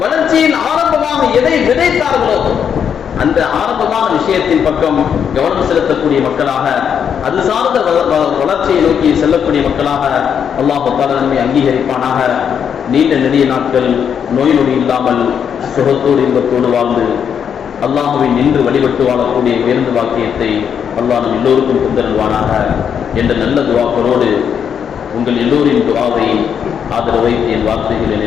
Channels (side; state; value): right; quieter; 7.8 dB